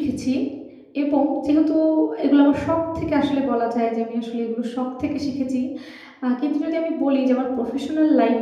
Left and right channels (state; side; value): identical; both; correlation 1.00